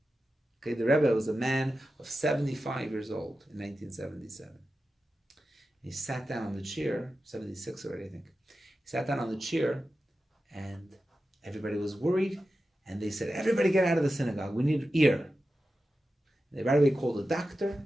Okay, the Rebbe was a man of 75 years old in 1977. He sat down on the chair, 76 already, I think. He sat down on the chair, and everybody was worried, and they said, everybody get out of the synagogue, we need ear. They right away called a doctor,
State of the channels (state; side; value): normal; both; correlation 0.92